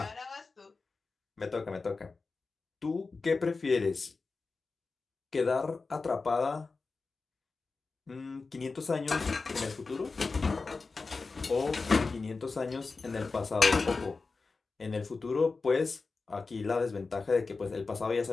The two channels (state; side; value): quieter; right; 4.1 dB